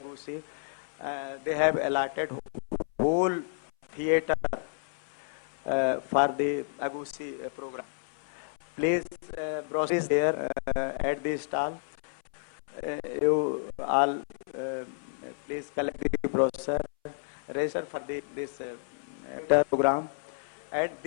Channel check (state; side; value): silent; right; 57 dB below the other